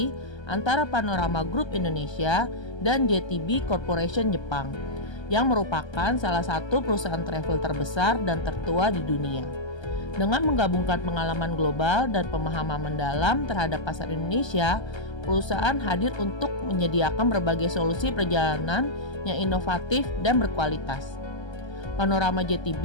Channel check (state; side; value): late; right; 1.3 ms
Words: antara Panorama Group Indonesia dan JTB Corporation Jepang, yang merupakan salah satu perusahaan travel terbesar dan tertua di dunia. Dengan menggabungkan pengalaman global dan pemahaman mendalam terhadap pasar Indonesia, perusahaan hadir untuk menyediakan berbagai solusi perjalanan yang inovatif dan berkualitas. Panorama